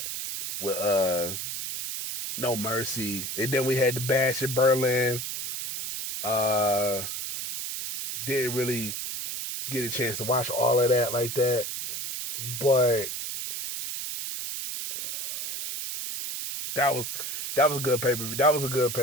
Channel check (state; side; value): noise; right; hiss, 5 dB below the sound